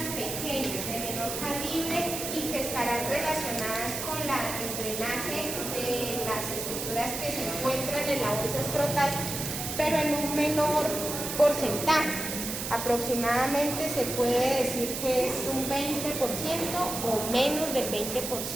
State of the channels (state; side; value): noise; right; hiss, 5 dB below the sound